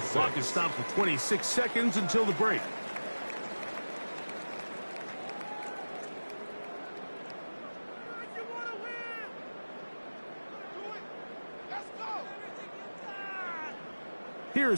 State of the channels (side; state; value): both; inverted; correlation -1.00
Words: Clock is stopped for 26 seconds until the break.